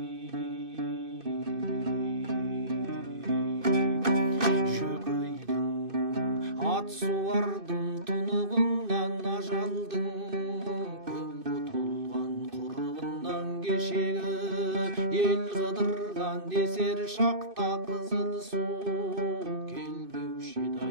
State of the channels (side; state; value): left; late; 2.5 ms